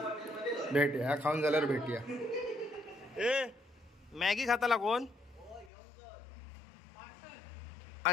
भेटूया खाऊन झाल्यावर भेटूया. ए मॅगी खाताला कोण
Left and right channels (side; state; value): right; drops out; at 5.7 s